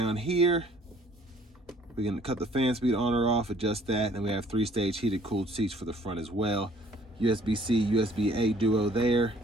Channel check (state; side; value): normal; both; correlation 0.58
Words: here. We can cut the fan speed on or off, adjust that, and we have 3-stage heated cooled seats for the front as well. USB-C, USB-A duo there.